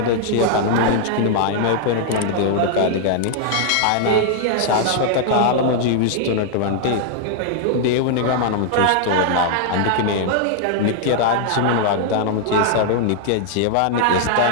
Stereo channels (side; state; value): both; different; correlation 0.00